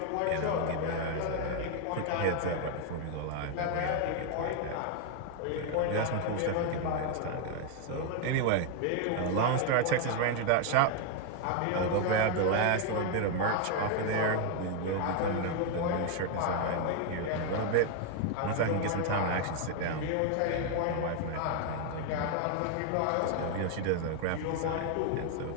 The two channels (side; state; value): both; different; correlation 0.01